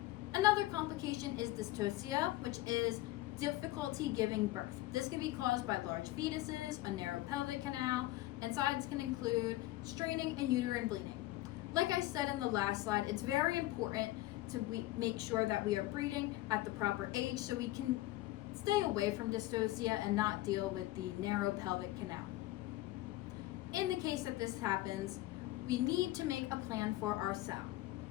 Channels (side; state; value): right; quieter; 17.2 dB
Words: Another complication is dystocia, which is difficulty giving birth. This can be caused by large fetuses, a narrow pelvic canal, and signs can include straining and uterine bleeding. Like I said in the last slide, it's very important to make sure that we are breeding at the proper age so we can stay away from dystocia and not deal with the narrow pelvic canal. In the case that this happens, we need to make a plan for our sow.